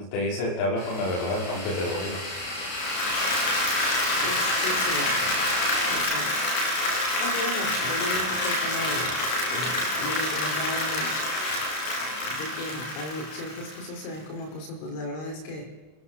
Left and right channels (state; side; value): late; right; 32 ms